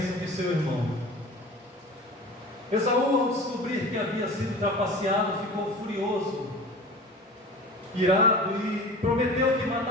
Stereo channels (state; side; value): normal; both; correlation 0.37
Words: de seu irmão. Esaú, ao descobrir que havia sido trapaceado, ficou furioso, irado, e prometeu que